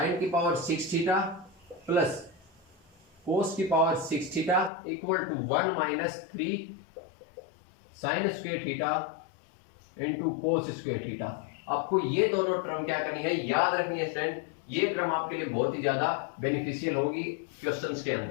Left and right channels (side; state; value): right; drops out; at 4.7 s